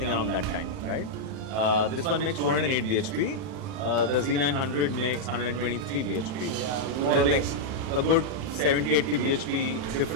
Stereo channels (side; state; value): left; late; 31 ms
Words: around that time, right? This one makes 208 bhp. The Z900 makes 123 bhp. So there's like a good 70-80 bhp